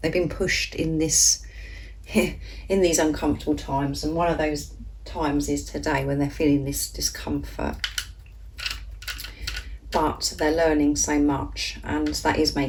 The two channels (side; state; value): both; identical; correlation 1.00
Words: been pushed in this, in these uncomfortable times, and one of those times is today when they're feeling this discomfort. But they're learning so much, and that is